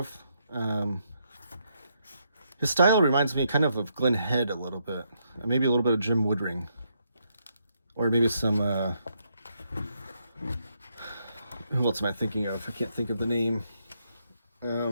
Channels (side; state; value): both; inverted; correlation -0.77